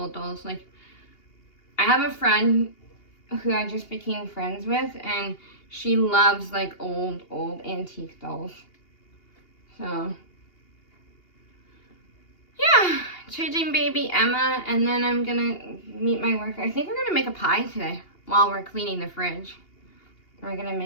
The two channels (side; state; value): right; late; 2.8 ms